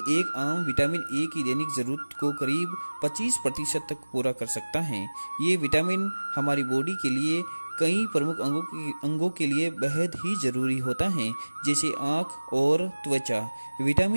एक आम विटामिन ए की दैनिक जरूरत को करीब 25% तक पूरा कर सकता है। ये विटामिन हमारी बॉडी के लिए कई प्रमुख अंगों के लिए बेहद ही जरूरी होता है, जैसे आँख और त्वचा।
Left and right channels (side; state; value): both; inverted; correlation -1.00